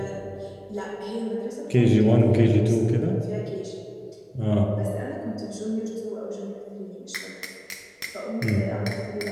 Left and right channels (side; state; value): both; identical; correlation 1.00